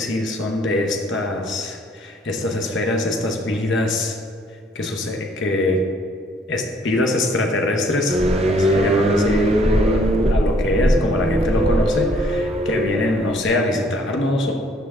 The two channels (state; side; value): normal; both; correlation 0.62